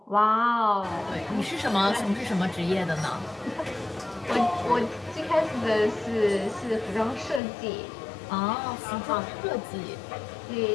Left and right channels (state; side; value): drops out; right; at 7.4 s